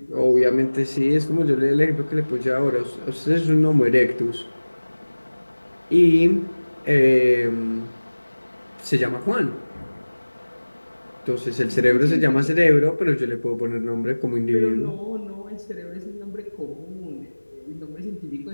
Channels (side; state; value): both; inverted; correlation -1.00